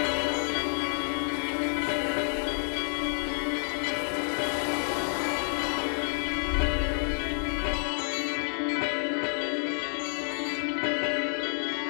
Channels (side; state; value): right; silent; 58 dB below the other